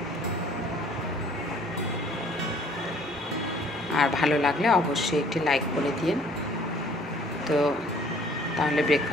আর ভালো লাগলে অবশ্যই একটি লাইক করে দিন। তো তাহলে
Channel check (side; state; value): both; normal; correlation 0.57